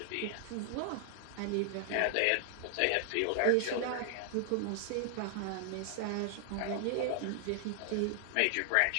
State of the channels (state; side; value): different; both; correlation 0.00